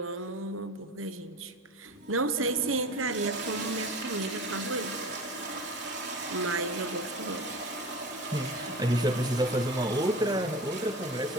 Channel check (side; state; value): both; normal; correlation 0.34